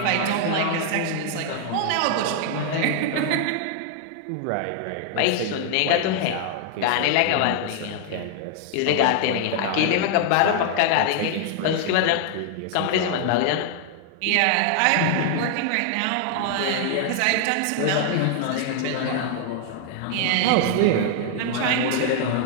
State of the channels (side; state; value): both; different; correlation 0.00